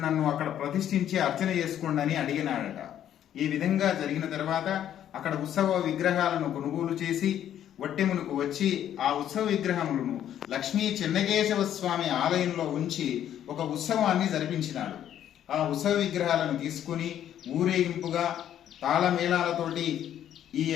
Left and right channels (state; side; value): quieter; right; 10.6 dB